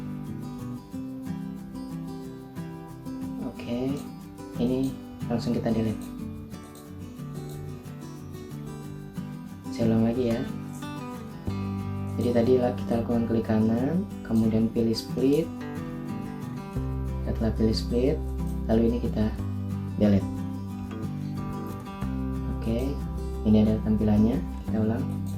Oke, ini langsung kita delete. Saya ulang lagi ya. Jadi tadi kita lakukan klik kanan, kemudian pilih split. Setelah pilih split, lalu ini kita delete. Oke, ini ada tampilannya. Kita ulang.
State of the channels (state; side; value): identical; both; correlation 1.00